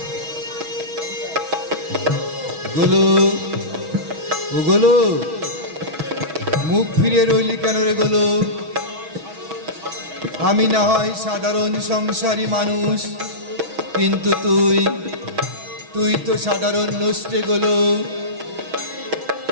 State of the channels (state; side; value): late; left; 6.2 ms